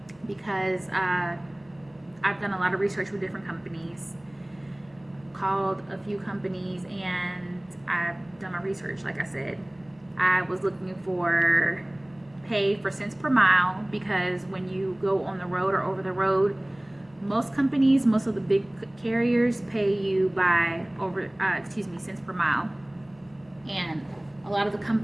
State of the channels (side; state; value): left; noise; hum, 29 dB below the sound